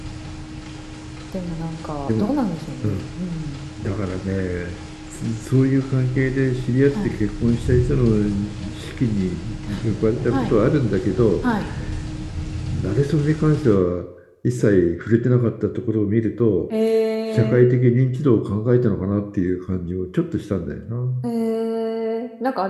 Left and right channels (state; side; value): identical; both; correlation 1.00